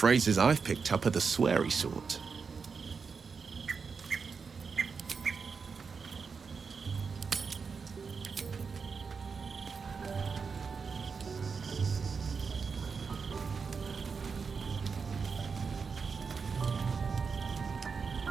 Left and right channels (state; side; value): quieter; left; 5.4 dB